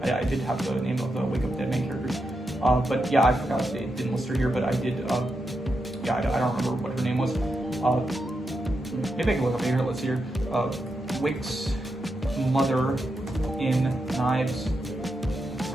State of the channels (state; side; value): normal; both; correlation 0.85